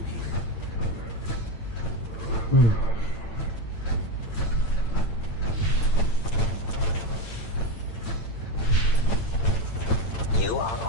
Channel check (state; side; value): late; right; 8.9 ms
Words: here. You are